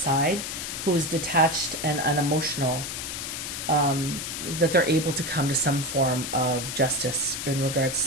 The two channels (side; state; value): left; noise; hiss, 5 dB below the sound